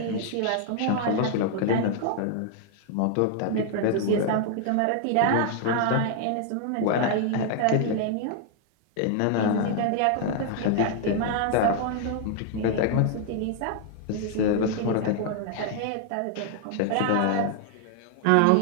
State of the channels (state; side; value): different; both; correlation 0.00